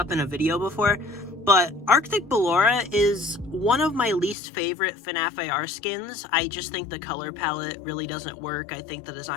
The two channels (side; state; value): right; drops out; at 4.4 s